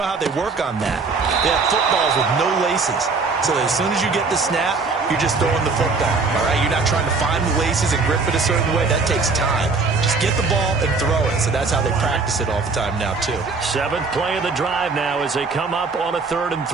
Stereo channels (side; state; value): left; quieter; 4.3 dB